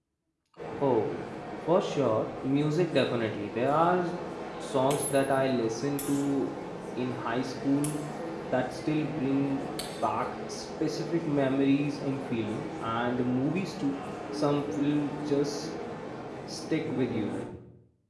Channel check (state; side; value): identical; both; correlation 1.00